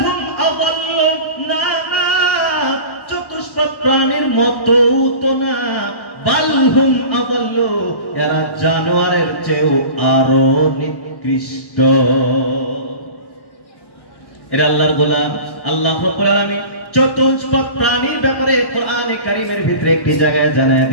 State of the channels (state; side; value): late; right; 1.1 ms